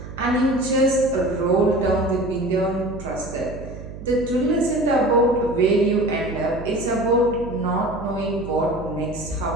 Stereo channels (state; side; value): noise; right; hum, 12 dB below the sound